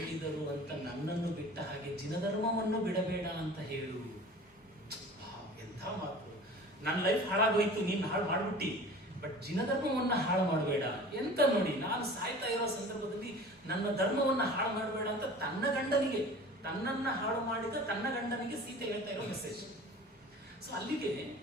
ಅಂತ ನನ್ನನ್ನು ಬಿಟ್ಟ ಹಾಗೆ ಜಿನಧರ್ಮವನ್ನು ಬಿಡಬೇಡ ಅಂತ ಹೇಳು. ಎಂಥ ಮಾತು! ನನ್ನ ಲೈಫ್ ಹಾಳಾಗೋಯ್ತು, ನೀನು ಹಾಳು ಮಾಡ್ಬಿಟ್ಟಿ, ಬಟ್ ಜಿನಧರ್ಮವನ್ನ ಹಾಳು ಮಾಡಬೇಡ. ಎಂತ ನೋಡಿ, ನಾನು ಸಾಯ್ತಾ ಇರೋ ಸಂದರ್ಭದಲ್ಲಿ ನನ್ನ ಧರ್ಮವನ್ನ ಹಾಳು ಮಾಡಬೇಡ ಅಂತ ತನ್ನ ಗಂಡನಿಗೆ, ತನ್ನನ್ನ ಹಾಳು ಮಾಡಿದ ತನ್ನ ಗಂಡನಿಗೆ ಸೀತೆ ಹೇಳ್ತಾ ಇರೋ ಮೆಸೇಜ್. ಸೊ ಅಲ್ಲಿಗೆ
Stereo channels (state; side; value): normal; both; correlation 0.41